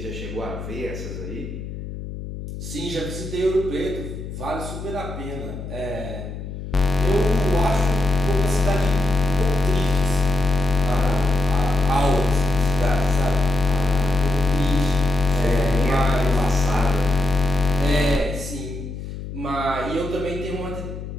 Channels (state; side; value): noise; left; hum, 9 dB below the sound